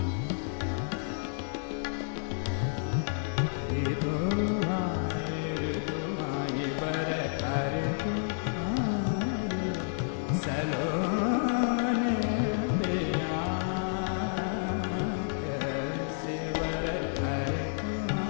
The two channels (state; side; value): silent; right; 58 dB below the other